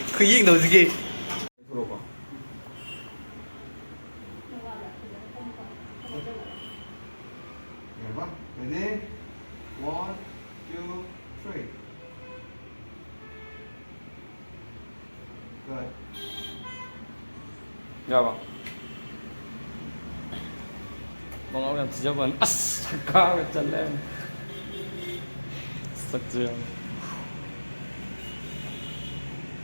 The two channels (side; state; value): both; inverted; correlation -1.00